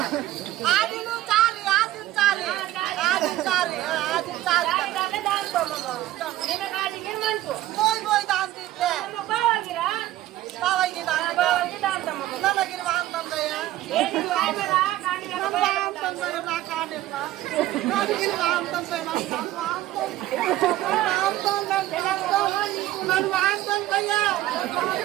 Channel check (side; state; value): left; quieter; 14.9 dB